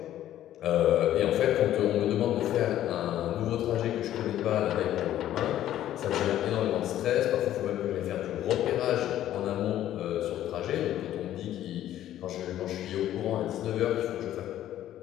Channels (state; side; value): quieter; right; 12.4 dB